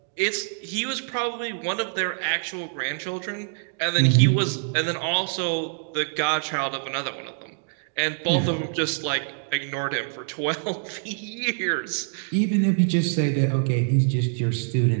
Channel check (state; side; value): silent; left; 62 dB below the other